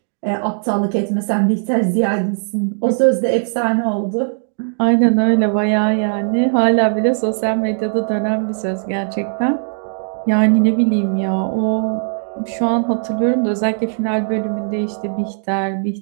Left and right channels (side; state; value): left; silent; 63 dB below the other